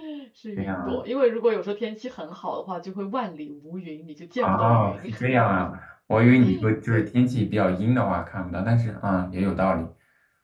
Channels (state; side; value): identical; both; correlation 1.00